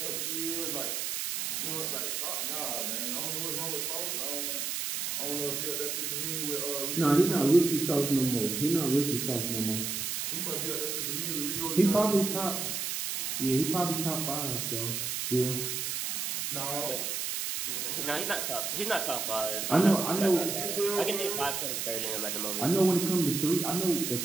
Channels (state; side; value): noise; right; hiss, 2 dB below the sound